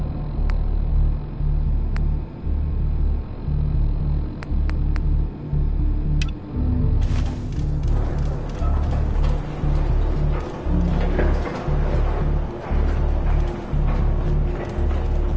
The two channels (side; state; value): both; identical; correlation 1.00